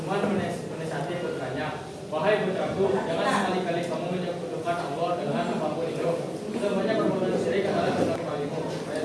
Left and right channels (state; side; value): identical; both; correlation 1.00